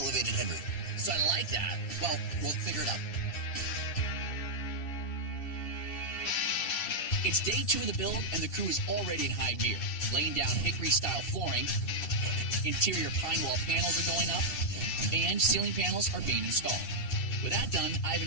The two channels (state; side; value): late; right; 2.7 ms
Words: headroom. So I like that. Well, we'll figure it out. It's day 2 of the build, and the crew is already in high gear. Laying down hickory-style flooring, interior pine wall panels are going up, and ceiling panels are being installed. With that done, I've